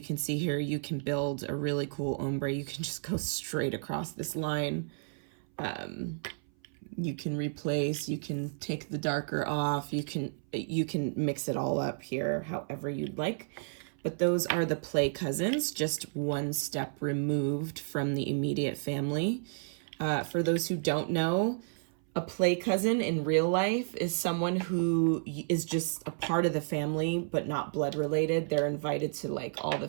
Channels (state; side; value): silent; left; 57 dB below the other